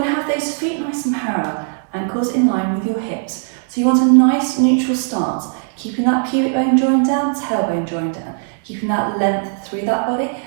to have those feet nice and parallel, ankles in line with your hips. So you want a nice neutral stance, keeping that pubic bone joint down, tailbone joint down, keeping that length through that body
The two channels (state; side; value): silent; left; digital silence